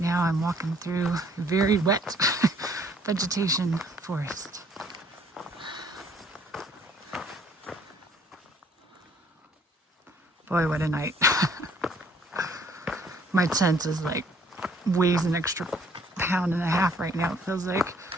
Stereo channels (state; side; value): normal; both; correlation 0.61